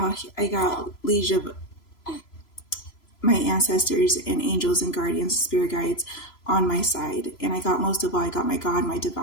liege of my ancestors and angels and guardians, spirit guides on my side. And most of all, I got my God, my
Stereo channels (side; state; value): right; late; 3.0 ms